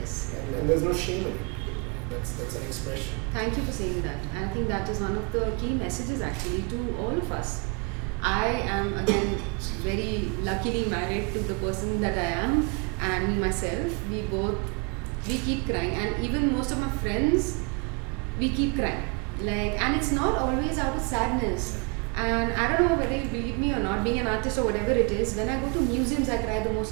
And there's no shame in it. That's an expression. Thank you for saying that. And I think that is one of the key messages actually to all of us. I am again very luckily married to the person that I am, and me myself, we keep crying, and even most of my friends, we keep crying. And it's not always out of sadness. And I don't know whether you believe me or not, being an artist or whatever it is, when I go to museums, I cry the most.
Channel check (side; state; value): left; quieter; 32.7 dB